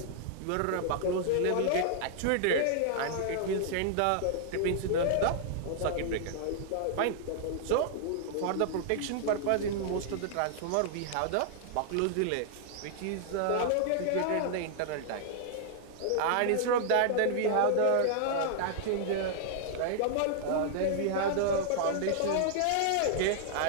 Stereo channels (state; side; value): different; both; correlation -0.01